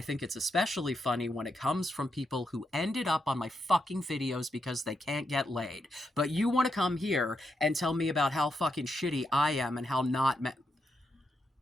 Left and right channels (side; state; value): both; normal; correlation 0.83